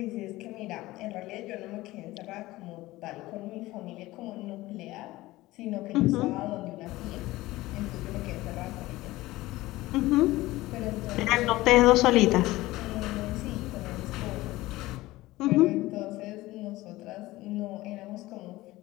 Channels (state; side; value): quieter; right; 18.3 dB